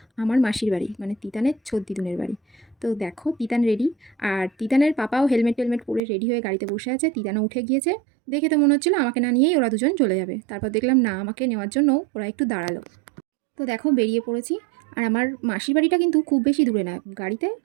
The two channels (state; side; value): drops out; left; at 6.0 s